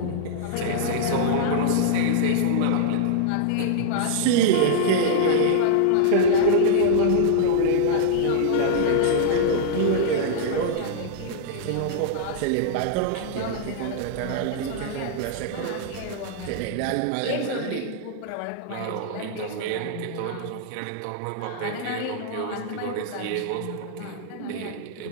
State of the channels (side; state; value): both; different; correlation -0.01